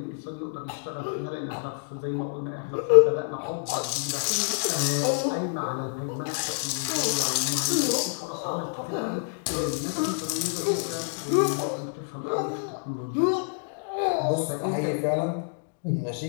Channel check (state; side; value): silent; right; digital silence